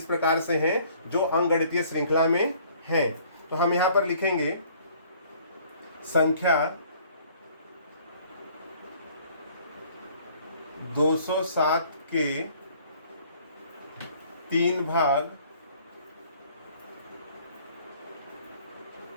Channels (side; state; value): both; inverted; correlation -0.57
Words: प्रकार से हैं जो अंकगणितीय श्रृंखला में हैं। तो हम यहाँ पर लिखेंगे संख्या 207 के 3 भाग